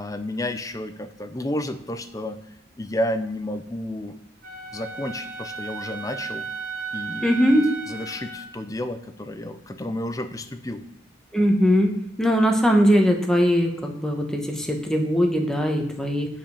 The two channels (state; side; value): normal; both; correlation 0.85